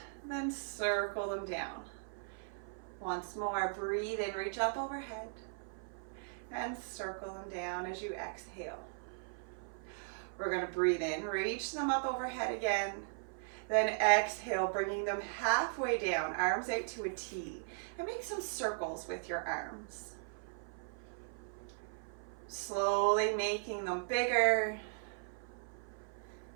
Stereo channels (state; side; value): silent; left; 52 dB below the other